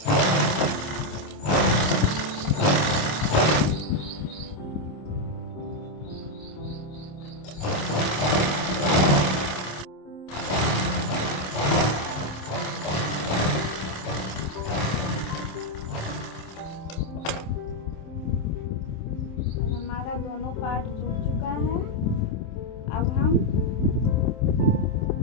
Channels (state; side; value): late; right; 27 ms